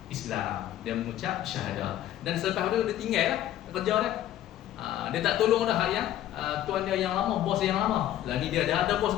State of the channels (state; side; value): quieter; right; 12.5 dB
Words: Islam. Dia mengucap syahadah. Dan selepas itu dia tinggal lah kerja dia. Dia tak tolong dah yang tuan dia yang lama, bos yang lama. Lah ni dia dah ada bos